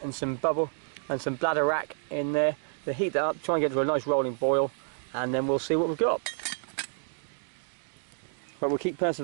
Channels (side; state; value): left; silent; digital silence